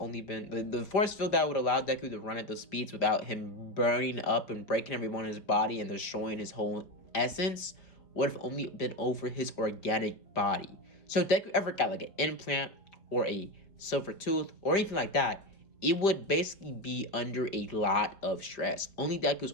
been the force field that would allow Deku to run at those speeds without him burning up and breaking every bone in his body and destroying his whole essence would have only been over his organic body. So if Deku ever got an implant or a silver tooth or anything like that, it would basically be under a lot of stress. Only Deku's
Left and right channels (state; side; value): late; right; 5.1 ms